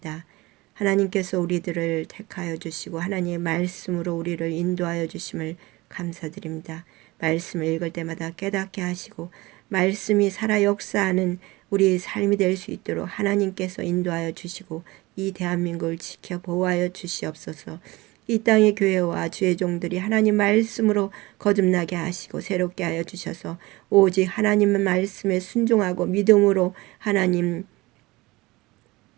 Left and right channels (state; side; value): quieter; left; 21.2 dB